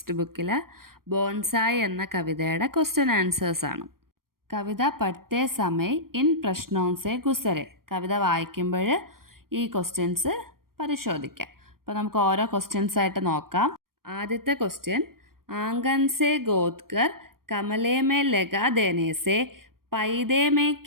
ബുക്കിലെ ബോൺസായി എന്ന കവിതയുടെ ക്വസ്റ്റ്യൻ ആൻസേഴ്സാണ്. Kavitha പഠിത്തേ Samay in പ്രശ്നോംസെ ഗുസരെ. കവിത വായിക്കുമ്പോൾ ഈ ക്വസ്റ്റ്യൻസ് പരിശോധിക്കാം. അപ്പോൾ നമുക്ക് ഓരോ ക്വസ്റ്റ്യൻസ് ആയിട്ട് നോക്കാം. ആദ്യത്തെ ക്വസ്റ്റ്യൻ, ആംഗൻ സെ ഗോദ്കർ കമലേ മേ ലഗാ ദേനെ സെ പൈതേ മേ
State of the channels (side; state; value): left; late; 0.93 ms